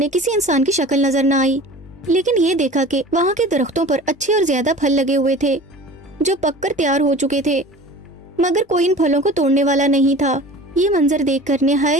کسی انسان کی شکل نظر نہ آئی، لیکن یہ دیکھا کہ وہاں کے درختوں پر اچھے اور زیادہ پھل لگے ہوئے تھے جو پک کر تیار ہو چکے تھے، مگر کوئی ان پھلوں کو توڑنے والا نہیں تھا۔ یہ منظر دیکھ کر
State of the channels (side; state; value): both; normal; correlation 0.40